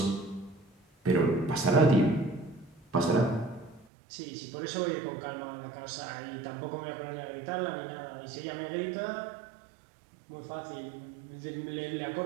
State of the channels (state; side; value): drops out; left; at 3.9 s